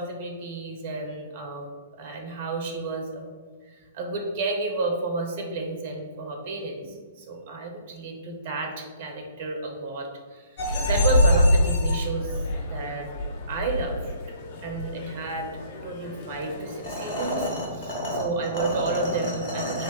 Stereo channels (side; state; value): both; inverted; correlation -0.56